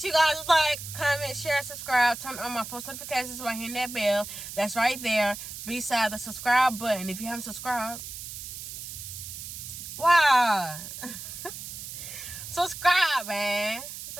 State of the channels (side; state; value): right; noise; hiss, 10 dB below the sound